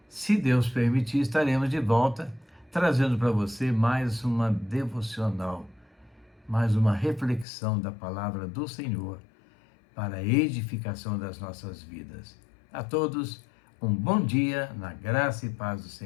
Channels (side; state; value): right; drops out; at 7.5 s